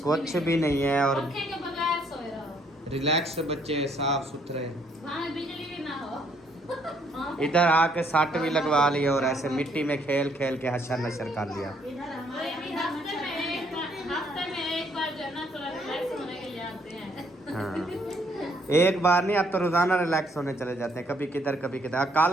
कुछ भी नहीं है। और पंखे के बगैर सोए रहो। रिलैक्स बच्चे, साफ सुथरे। वहाँ बिजली भी ना हो। इधर आके सट भी लगवा ली और ऐसे मिट्टी में खेल खेल के हशर नशर कर लिया। हफ्ते में एक बार जो है ना थोड़ा रिलैक्स होने के लिए आते हैं। हाँ एक बार नहीं, अब तो रोजाना रिलैक्स होने चले जाते हैं, कभी किधर कभी किधर।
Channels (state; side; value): normal; both; correlation 0.68